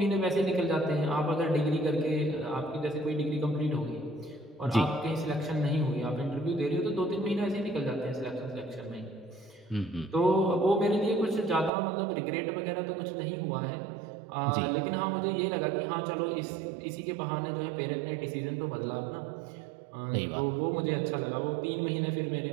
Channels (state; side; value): drops out; left; at 11.7 s